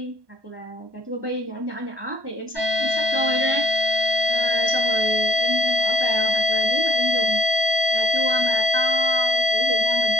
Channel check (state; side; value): late; left; 1.2 ms